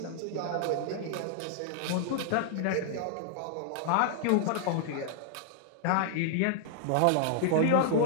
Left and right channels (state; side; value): different; both; correlation -0.01